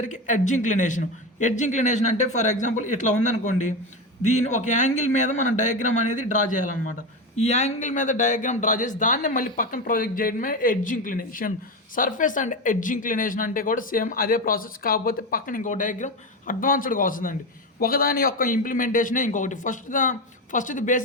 ఎడ్జ్ ఇంక్లినేషన్ అంటే ఫర్ ఎగ్జాంపుల్ ఇట్లా ఉందనుకోండి, దీని ఒక యాంగిల్ మీద మనం డయాగ్రామ్ అనేది డ్రా చేయాలన్నమాట. ఈ యాంగిల్ మీద డయాగ్రామ్ డ్రా చేసి దాన్ని మళ్ళీ పక్కన ప్రొజెక్ట్ చేయడమే edge inclination. Surface and edge inclination అంటే కూడా సేమ్ అదే ప్రాసెస్, కాకపోతే పక్కన ఇంకో డయాగ్రామ్ అడ్వాన్స్డ్గా వస్తుందండి. ఒకదాని యొక్క ఇంప్లిమెంటేషనే ఇంకొకటి. ఫస్ట్ది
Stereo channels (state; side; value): normal; both; correlation 0.17